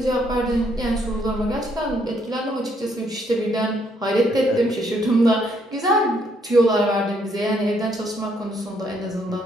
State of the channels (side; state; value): both; normal; correlation 0.71